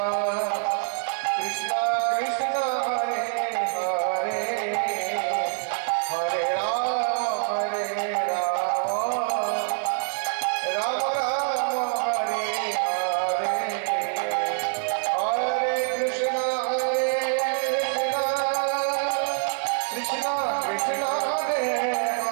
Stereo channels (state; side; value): silent; left; 61 dB below the other